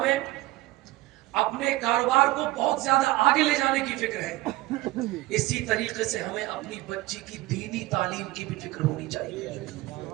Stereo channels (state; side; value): quieter; left; 19.0 dB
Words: اپنے کاروبار کو بہت زیادہ آگے لے جانے کی فکر ہے, اسی طریقے سے ہمیں اپنی بچی کی دینی تعلیم کی بھی فکر ہونی چاہیے.